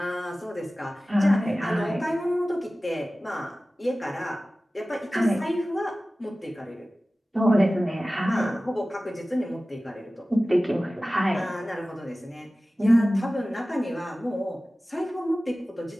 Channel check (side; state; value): both; normal; correlation 0.97